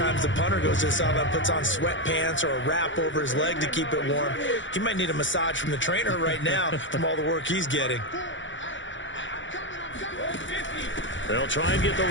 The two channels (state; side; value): late; right; 0.55 ms